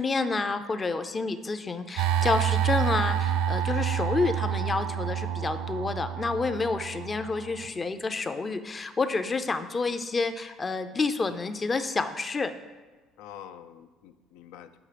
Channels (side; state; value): both; normal; correlation 0.68